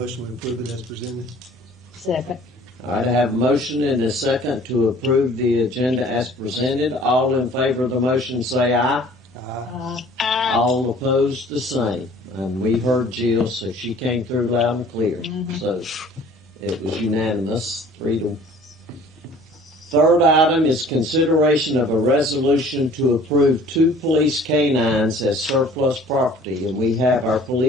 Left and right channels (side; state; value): both; normal; correlation 0.51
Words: to approve it as presented. Second. All right, I have a motion and a second to approve the agenda as presented. All in favor of the motion say aye. All opposed, the same. And we heard Jill, so she came through loud and clear. So it was unanimous, 3-1. Third item is consideration of a resolution to approve 2 police canines as surplus property. And we have our